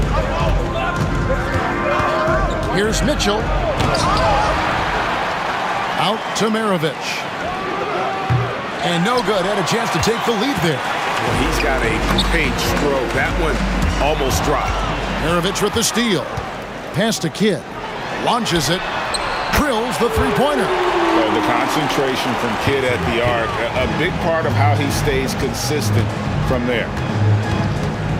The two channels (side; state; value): both; identical; correlation 1.00